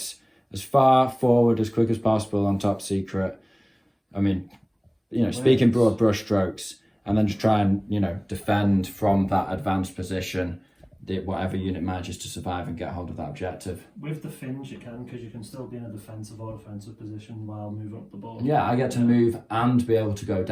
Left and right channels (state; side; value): identical; both; correlation 1.00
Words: as far forward as quick as possible on Top Secret. I mean, speaking broad brush strokes, and then just try and, defend from that advanced position, whatever unit manages to survive and get hold of that objective. With the Finns you can, because you can still be in a defensive or offensive position while moving up the board. Yeah, I get to move and be able to go